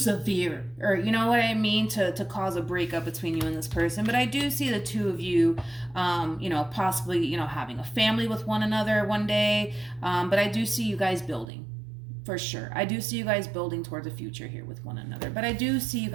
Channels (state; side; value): drops out; left; at 11.5 s